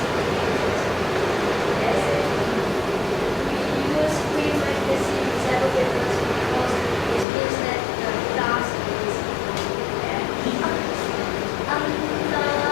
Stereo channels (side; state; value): right; drops out; at 7.2 s